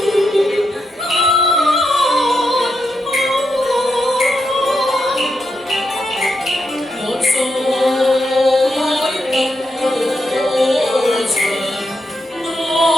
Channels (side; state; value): both; normal; correlation 0.83